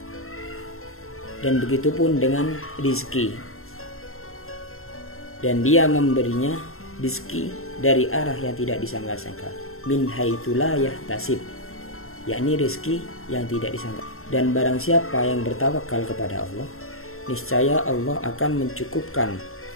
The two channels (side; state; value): right; late; 0.62 ms